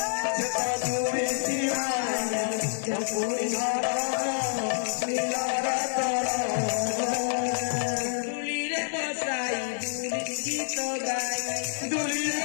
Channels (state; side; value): silent; right; digital silence